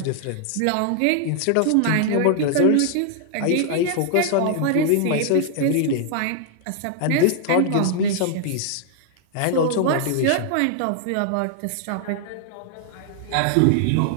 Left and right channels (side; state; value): both; different; correlation 0.00